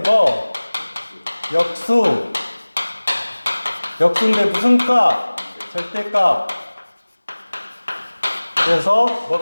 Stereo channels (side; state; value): both; inverted; correlation -1.00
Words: 뭐? 역수. 역수인데 무슨 값? 절대값. 그래서